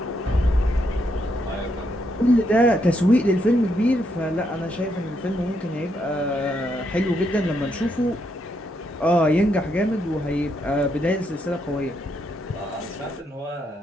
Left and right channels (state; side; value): normal; both; correlation 0.77